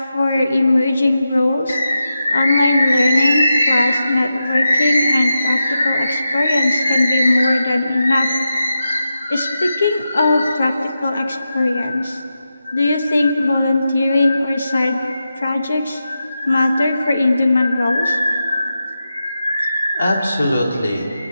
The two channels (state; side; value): inverted; both; correlation -0.89